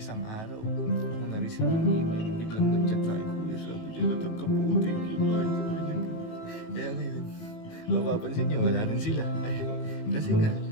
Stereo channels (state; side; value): late; right; 18 ms